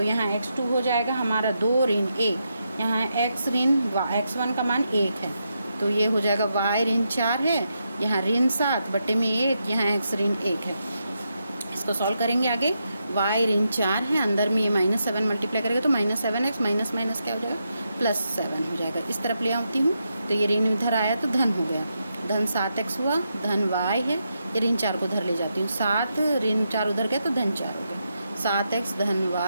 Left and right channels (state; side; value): inverted; both; correlation -0.84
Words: यहाँ x2 हो जाएगा हमारा 2 ऋण 1, यहाँ x ऋण x1 का मान 1 है तो ये हो जाएगा y ऋण 4 है, यहाँ ऋण 7 बटे में 1, यहाँ x ऋण 1 है। इसको सॉल्व करेंगे आगे, y ऋण 4 है, अंदर में ये -7 मल्टीप्लाई करेंगे तो -7x माइनस माइनस क्या हो जाएगा, +7 हो जाएगा। इस तरफ ले आती हूँ तो ये ऋण इधर आया तो धन हो गया, धन 7x हुआ, धन y है, ये ऋण 4 को उधर ले जाती हूँ, 7 ऋण 4 उधर गया तो धन 4 हो गया, 7x धन